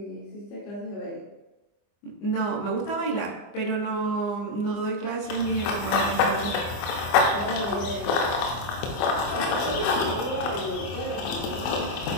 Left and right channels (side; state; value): right; late; 24 ms